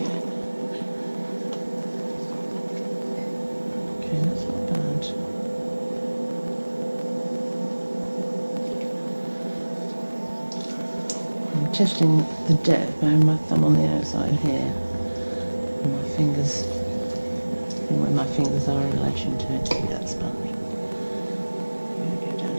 Okay, that's not bad. I'm testing the depth. I have my thumb on the outside here. My fingers, where my fingers are in relation to it, to be that sponge. I'm going to go down a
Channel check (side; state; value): both; inverted; correlation -1.00